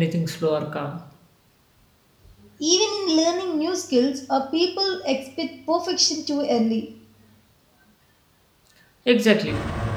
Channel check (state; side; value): identical; both; correlation 1.00